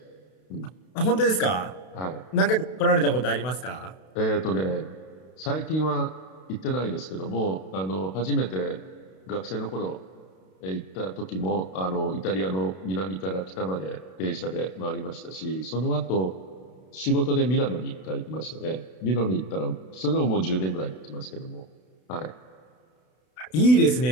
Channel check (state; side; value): late; right; 32 ms